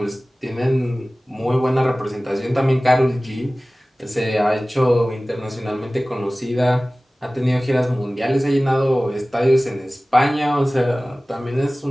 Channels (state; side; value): normal; both; correlation 0.98